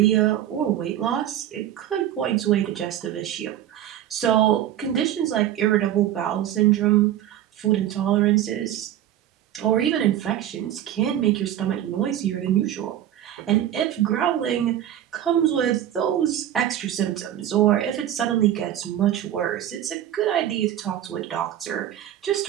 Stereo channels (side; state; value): left; quieter; 11.6 dB